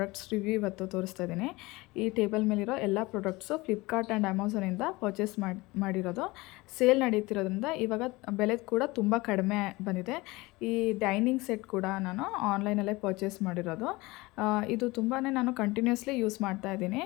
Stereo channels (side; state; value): right; quieter; 22.0 dB